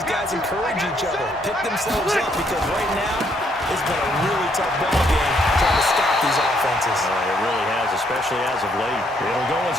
guys encourage each other, pick themselves up, because right now it's been a really tough ball game trying to stop these offenses. It really has, especially as of late. It'll go as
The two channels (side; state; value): both; normal; correlation 0.71